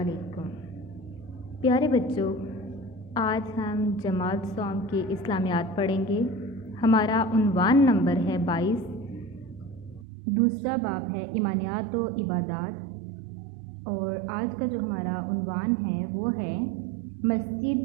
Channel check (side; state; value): left; drops out; at 10.1 s